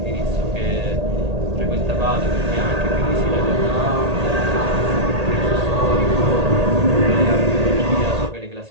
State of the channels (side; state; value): left; late; 1.8 ms